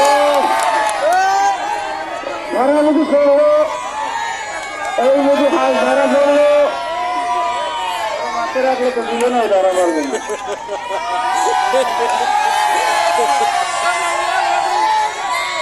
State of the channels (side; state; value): left; noise; rumble, 28 dB below the sound